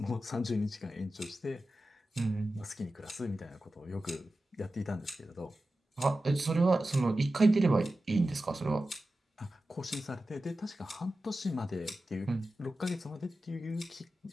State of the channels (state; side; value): normal; both; correlation 0.93